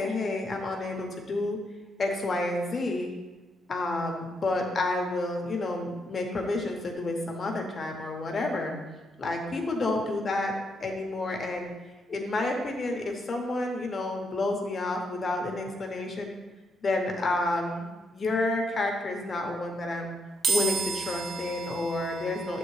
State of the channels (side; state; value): both; normal; correlation 0.78